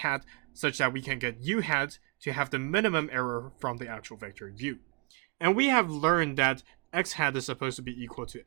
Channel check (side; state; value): left; quieter; 31.9 dB